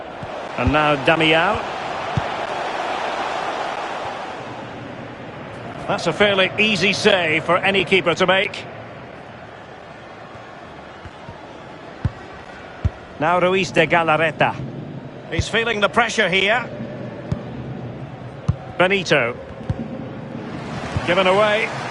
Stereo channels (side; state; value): both; identical; correlation 1.00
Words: And now Damião. That's a fairly easy save for any keeper to make. Now Ruiz de Galarreta. He's feeling the pressure here. Benito. Given away.